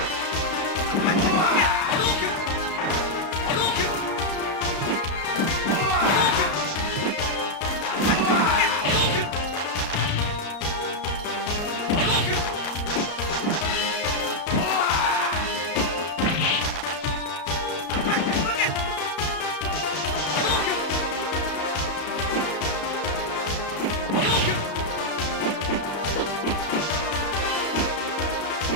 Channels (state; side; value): late; right; 33 ms